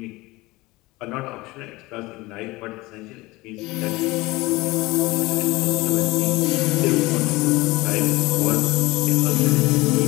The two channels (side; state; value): right; quieter; 21.1 dB